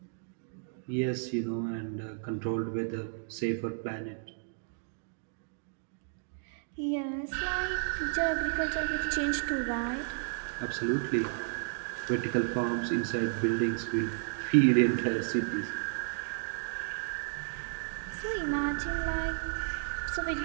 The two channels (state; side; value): silent; left; digital silence